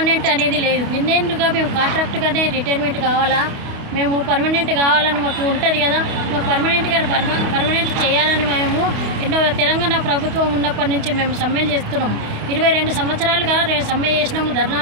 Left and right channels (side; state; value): left; late; 28 ms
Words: అనేది లేదు. ఇన్నేళ్ళుగా మేము కాంట్రాక్ట్గానే రిటైర్మెంట్ కావాలా, మేము పర్మనెంట్ కావాలని మాకు ఉంటుంది కదా, మాకు పర్మనెంట్ చేయాలని మేము ఎన్నో తెలంగాణ ప్రభుత్వం ఉన్నప్పటి నుంచి మేము సమ్మెలు చేస్తున్నాము. 22 సంవత్సరాలుగా సమ్మె చేసినాము,